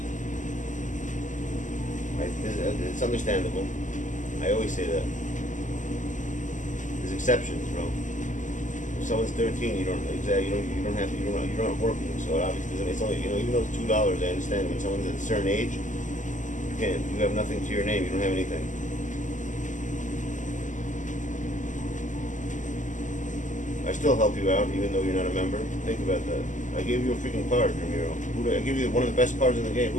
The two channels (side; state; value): right; late; 0.37 ms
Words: It's understandable. I always say that. There's exceptions, bro. If someone's 13, you don't have working. So it obviously it's only, even though it's $2, I understand. When someone's at a certain age, you have nothing to your name. You don't have anything. I still help you out, even though you're not a member. Think about that. I gave you a freaking card, Ramiro. I gave you one of the best cards in the game.